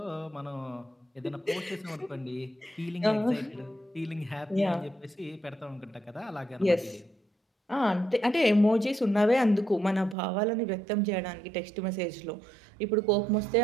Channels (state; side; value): drops out; left; at 10.2 s